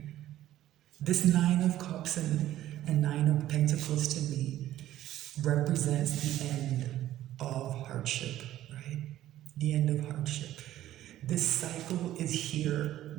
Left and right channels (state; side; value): quieter; left; 13.4 dB